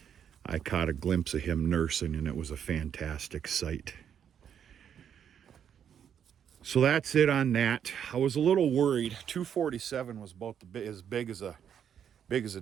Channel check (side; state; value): left; quieter; 8.6 dB